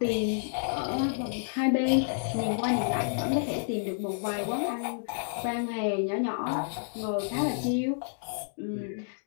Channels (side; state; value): right; silent; digital silence